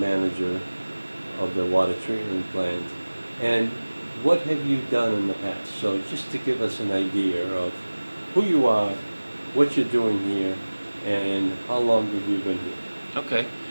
of the water treatment plant? And what have you done in the past? So just to give us an idea of who you are, what you're doing here, and how long have you been here? Okay.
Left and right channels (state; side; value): inverted; both; correlation -1.00